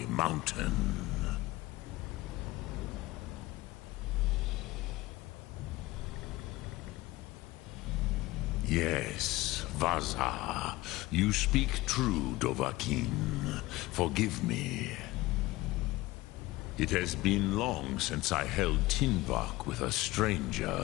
mountain? Yes, Vaza, you speak true, Dovahkiin. Forgive me. It has been long since I held Tinvak with a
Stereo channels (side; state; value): right; quieter; 19.2 dB